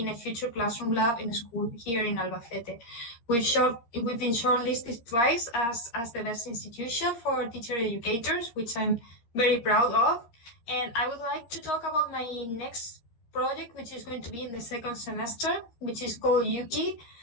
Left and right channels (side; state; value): right; late; 13 ms